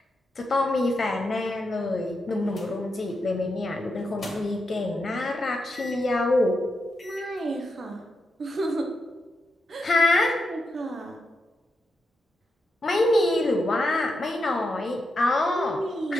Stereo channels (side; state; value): both; normal; correlation 0.85